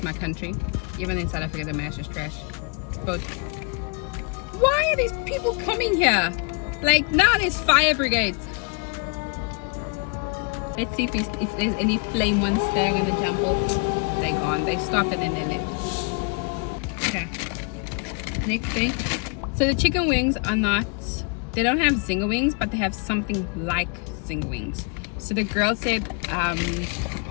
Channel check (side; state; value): right; quieter; 34.1 dB